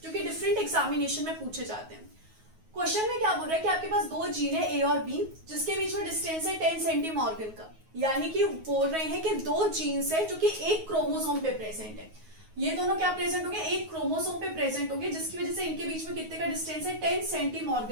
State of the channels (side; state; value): left; late; 9.4 ms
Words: जो कि डिफरेंट एग्जामिनेशन में पूछे जाते हैं। क्वेश्चन में क्या बोल रहा है कि आपके पास दो जीन है ए और बी, जिसके बीच में डिस्टेंस है 10 सेंटीमॉर्गन का। यानी कि बोल रहे हैं कि दो जीन्स है जो कि एक क्रोमोसोम पे प्रेजेंट है। ये दोनों क्या प्रेजेंट होंगे? एक क्रोमोसोम पे प्रेजेंट होंगे, जिसकी वजह से इनके बीच में कितने का डिस्टेंस है? 10